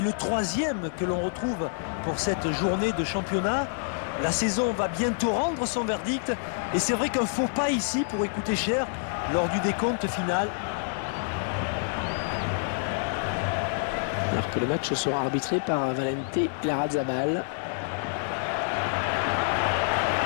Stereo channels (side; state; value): right; silent; digital silence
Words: le troisième que l'on retrouve pour cette journée de championnat. La saison va bientôt rendre son verdict et c'est vrai qu'un faux pas ici pourrait coûter cher lors du décompte final. Alors que le match sera arbitré par Valente Larrazabal.